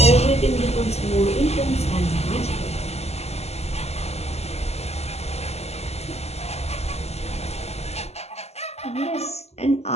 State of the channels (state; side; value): late; right; 0.30 ms